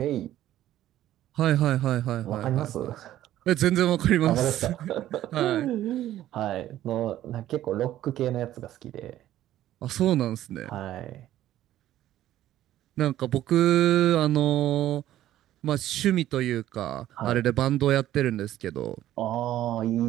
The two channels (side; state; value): left; quieter; 13.2 dB